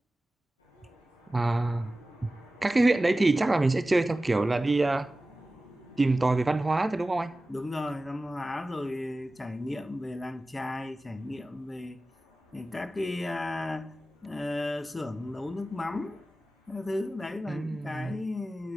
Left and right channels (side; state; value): both; normal; correlation 0.96